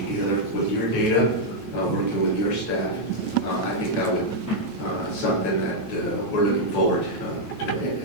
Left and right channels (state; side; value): late; right; 9.2 ms